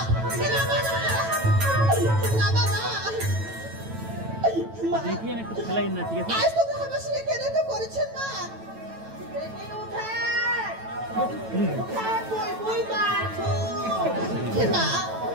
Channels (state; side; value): late; left; 9.1 ms